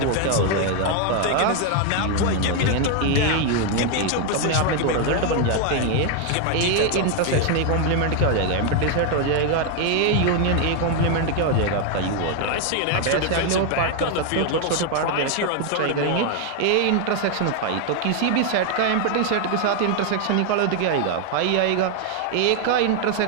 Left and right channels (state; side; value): different; both; correlation 0.01